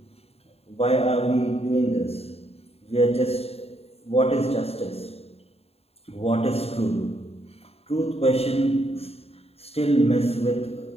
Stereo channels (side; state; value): right; late; 0.29 ms